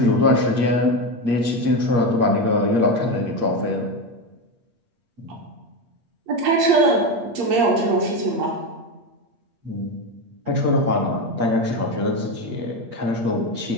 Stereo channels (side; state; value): left; late; 8.5 ms